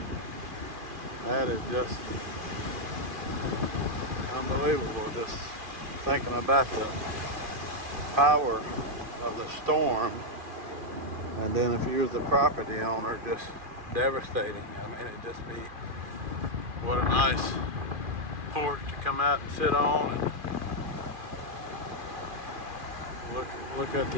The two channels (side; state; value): left; late; 2.4 ms